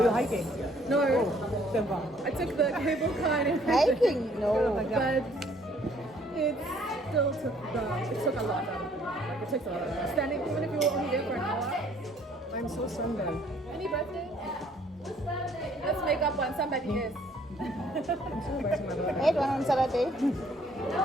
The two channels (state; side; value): normal; both; correlation 0.62